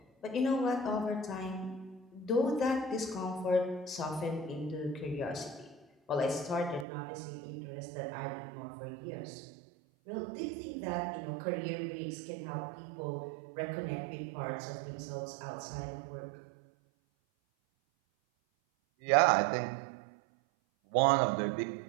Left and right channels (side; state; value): left; drops out; at 6.9 s